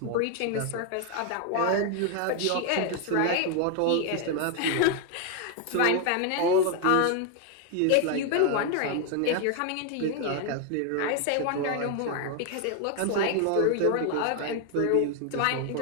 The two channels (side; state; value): both; different; correlation 0.01